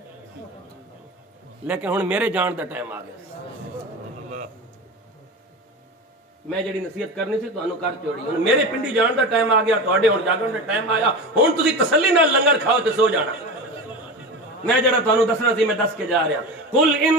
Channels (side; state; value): both; normal; correlation 0.26